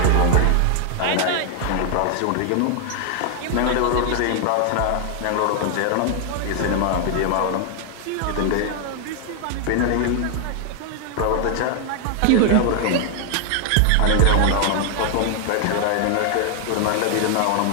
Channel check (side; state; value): both; different; correlation 0.00